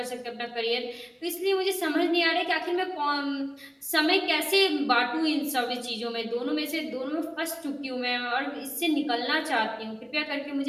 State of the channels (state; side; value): identical; both; correlation 1.00